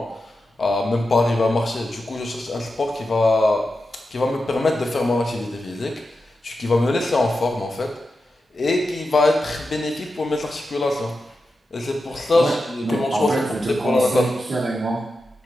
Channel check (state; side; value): normal; both; correlation 0.90